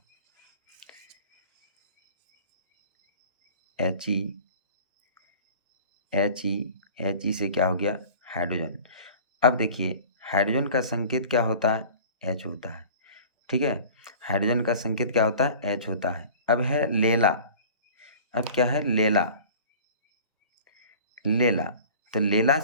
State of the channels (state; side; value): inverted; both; correlation -0.43